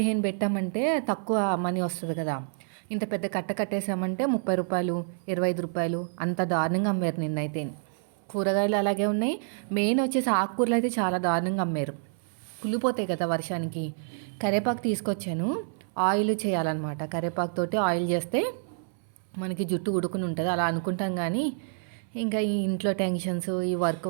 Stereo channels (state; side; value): silent; left; 59 dB below the other